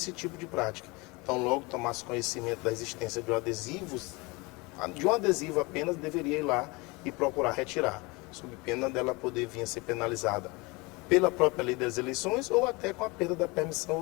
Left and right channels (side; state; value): right; quieter; 25.5 dB